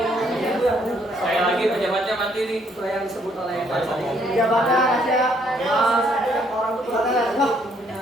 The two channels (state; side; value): normal; both; correlation 0.68